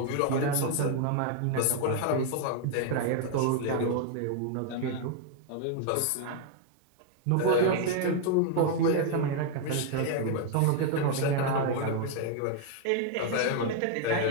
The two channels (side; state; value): both; different; correlation 0.00